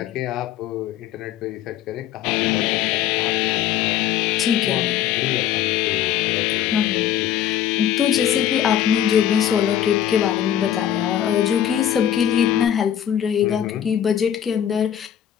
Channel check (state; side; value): quieter; right; 10.4 dB